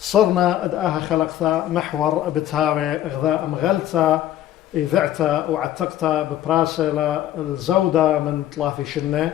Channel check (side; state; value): right; quieter; 12.5 dB